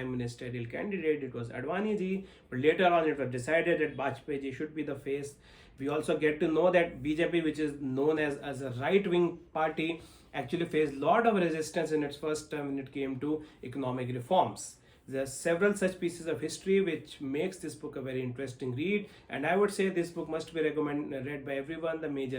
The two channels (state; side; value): identical; both; correlation 1.00